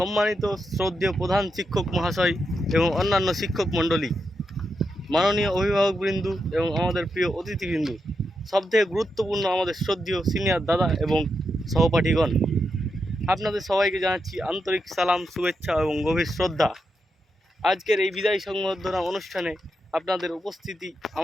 শ্রদ্ধেয় প্রধান শিক্ষক মহাশয় এবং অন্যান্য শিক্ষক মণ্ডলী, মাননীয় অভিভাবকবৃন্দ এবং আমাদের প্রিয় অতিথিবৃন্দ, সবথেকে গুরুত্বপূর্ণ আমাদের শ্রদ্ধেয় সিনিয়র দাদা এবং সহপাঠীগণ, আপনাদের সবাইকে জানাচ্ছি আন্তরিক সালাম, শুভেচ্ছা এবং গভীর শ্রদ্ধা। আজকের এই বিদায় সংবর্ধনা অনুষ্ঠানে আপনাদের উপস্থিতি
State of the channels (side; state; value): both; normal; correlation 0.85